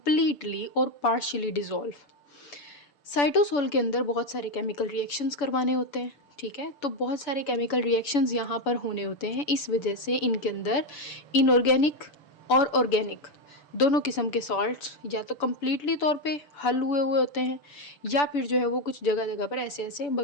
और पार्शियली डिजोल्व। साइटोसोल के अंदर बहुत सारे केमिकल रिएक्शंस करवाने होते हैं, ठीक है। तो बहुत सारे केमिकल रिएक्शंस यहाँ पर होने होते हैं, इस वजह से इनके अंदर इनऑर्गेनिक और ऑर्गेनिक दोनों किस्म के सॉल्ट्स या तो कम्प्लीटली तौर पे हल हुए हुए होते हैं या फिर जो है वो कुछ जगह जगह पर ऐसे ऐसे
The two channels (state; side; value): late; right; 7.0 ms